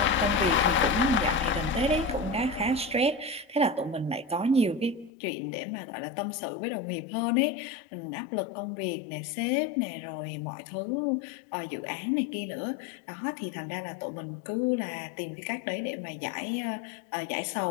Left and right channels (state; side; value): drops out; right; at 5.1 s